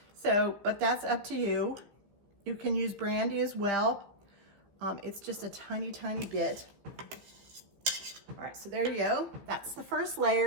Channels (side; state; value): left; late; 15 ms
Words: So, but that's up to you. You can use brandy as well. It's just a tiny, tiny bit. All right, so there you go. That's the first